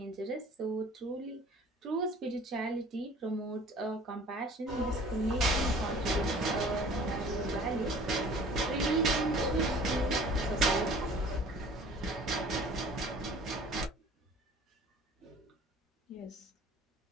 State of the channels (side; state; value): both; normal; correlation 0.48